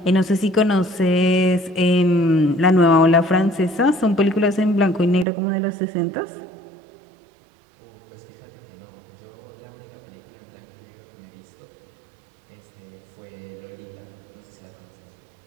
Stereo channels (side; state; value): left; drops out; at 5.2 s